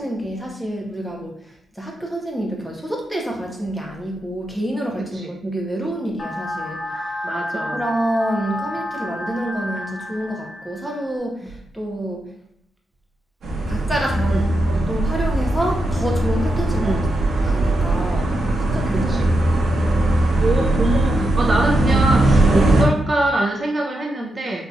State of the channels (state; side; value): normal; both; correlation 0.85